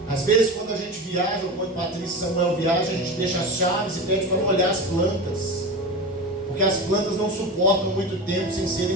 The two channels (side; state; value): both; normal; correlation 0.25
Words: Às vezes, quando a gente viaja, ou quando Patrícia e Samuel viajam, a gente deixa as chaves e pede para molhar as plantas, porque as plantas não suportam muito tempo sem